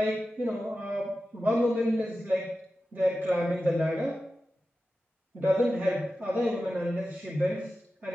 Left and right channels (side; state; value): both; normal; correlation 0.93